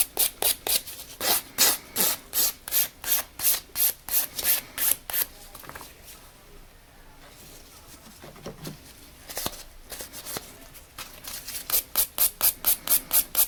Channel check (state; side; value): identical; both; correlation 1.00